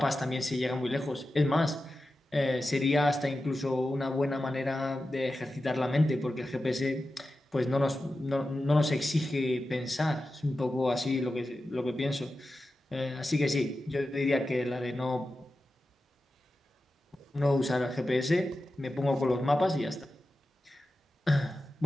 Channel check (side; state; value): both; normal; correlation 0.92